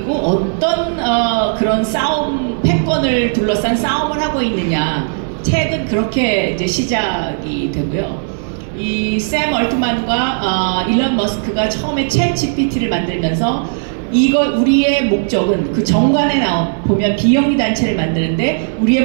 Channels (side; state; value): left; silent; digital silence